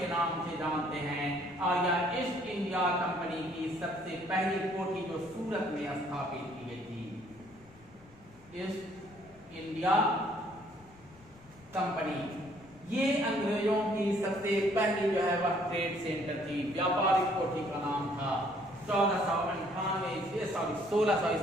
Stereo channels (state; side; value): noise; left; rumble, 25 dB below the sound